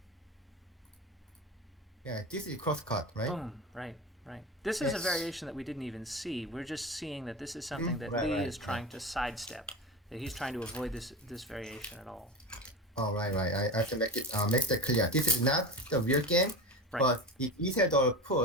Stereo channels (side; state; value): both; normal; correlation 0.27